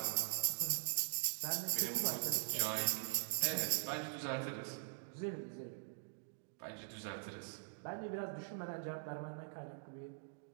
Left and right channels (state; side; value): silent; left; digital silence